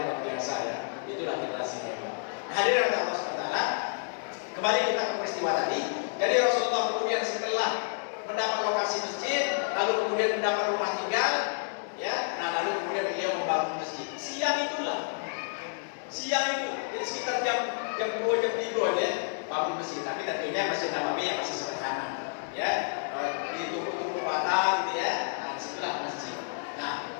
luar biasa ya. Itulah generasi mereka. Hadirin Allah SWT, kembali kita ke peristiwa tadi. Jadi Rasulullah kemudian setelah mendapat lokasi masjid, lalu kemudian mendapat rumah tinggal, ya, nah lalu kemudian beliau membangun masjid. Siang itu, jadi sekitar jam 2 jam 3 ya, bangun masjid. Tapi tentunya Masjid Nabawi yang masih sederhana, ya, di tubuh bata, gitu ya. Nah, disitulah masjid. Nah,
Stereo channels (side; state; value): right; silent; digital silence